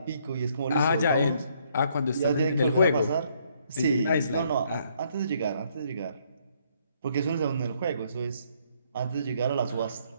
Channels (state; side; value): inverted; both; correlation -0.68